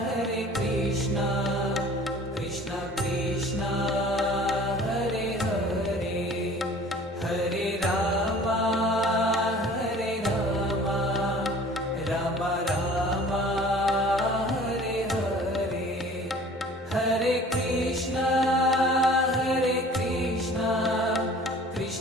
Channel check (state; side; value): normal; both; correlation 0.47